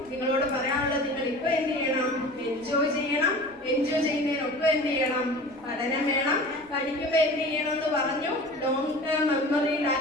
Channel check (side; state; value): left; noise; rumble, 29 dB below the sound